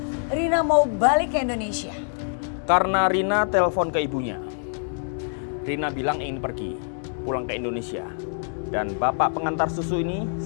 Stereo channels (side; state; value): right; silent; 62 dB below the other